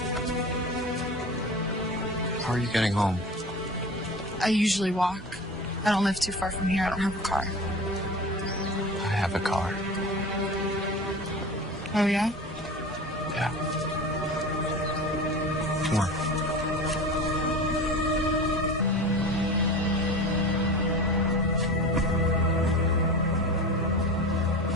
How are you getting home? I usually walk. I don't live too far from here. I don't have a car. I have a car. Oh, yeah? Yeah. Come on.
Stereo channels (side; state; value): both; normal; correlation 0.33